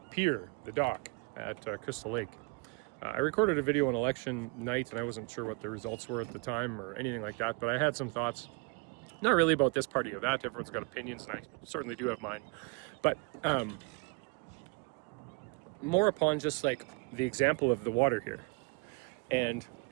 pier, the dock at Crystal Lake. I recorded a video on election night and I wasn't sure what the results were at the time or anything like that, but I had some thoughts, not really about this party or that. Everyone's got opinions and I certainly do have mine, but more upon just like the example of the water here and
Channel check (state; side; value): quieter; left; 30.0 dB